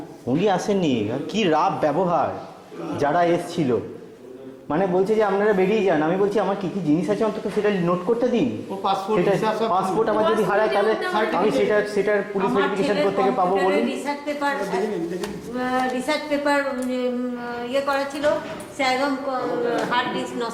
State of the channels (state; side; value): identical; both; correlation 1.00